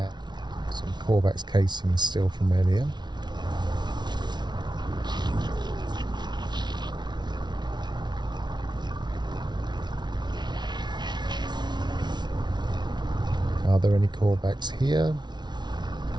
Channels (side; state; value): left; late; 0.21 ms